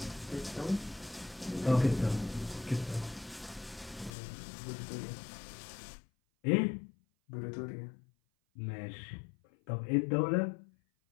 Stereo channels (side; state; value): right; drops out; at 4.1 s